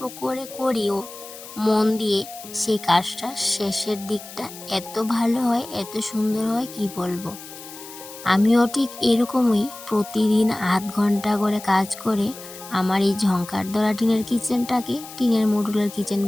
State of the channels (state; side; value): noise; left; hiss, 15 dB below the sound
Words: করে করিও মন দিয়ে, সেই কাজটা শেষের দিকটা এত ভালো হয়, এত সুন্দর হয় কি বলবো। আমিও ঠিক এরকমই প্রতিদিন আধ ঘন্টা করে কাজ করে আমার এই ঝংকার ধরা টিনের কিচেনটাকে টিনের মডুলার কিচেন